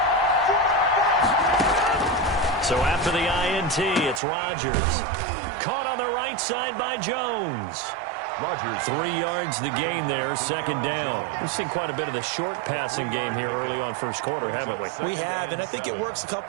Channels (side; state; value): left; drops out; at 4.2 s